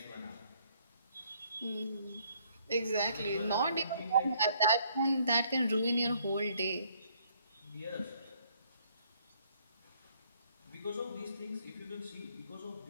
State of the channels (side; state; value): both; inverted; correlation -0.66